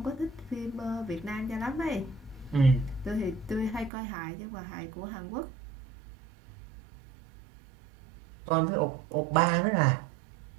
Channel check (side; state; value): left; drops out; at 3.9 s